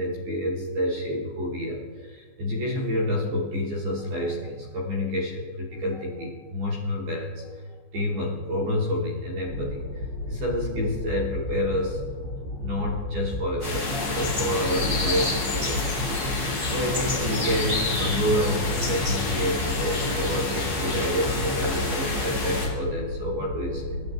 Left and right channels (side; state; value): left; late; 14 ms